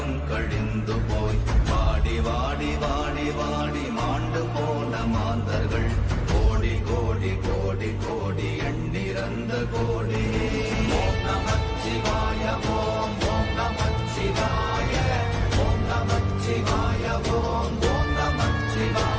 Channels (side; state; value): both; identical; correlation 1.00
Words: கழிந்து போய் வாடி வாடி வாடி வாடி மாண்டு போன மாந்தர்கள் கோடி கோடி கோடி கோடி எண்ணிறந்த கோடி. ஓம் நமச்சிவாய ஓம் ஓம் நமச்சிவாய ஓம் நமச்சிவாய ஓம் ஓம்